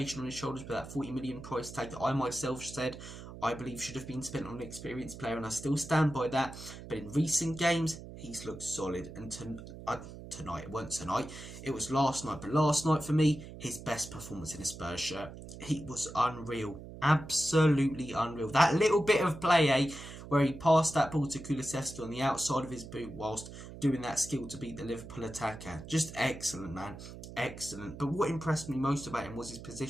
on his shoulders with that 40 million price tag that I myself said I believe should have been spent on an experienced player, and I still stand by that. But in recent games, he's looked solid. And tonight, it wasn't tonight, it was last night. But last night for me, his best performance in a Spurs shirt. He was unreal. Absolutely unreal. That little bit of play, where he passed that ball to Kulusevski on the outside of his boot whilst doing that skill to beat the Liverpool attacker. Just excellent, man. Excellent. But what impressed me most about him was his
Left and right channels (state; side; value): noise; right; hum, 13 dB below the sound